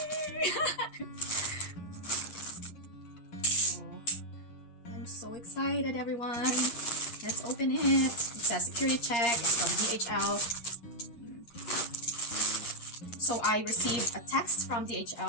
Oh, I'm so excited, everyone. Let's open it. It says security check. It's from DHL. So I received a text from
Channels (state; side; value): late; right; 8.5 ms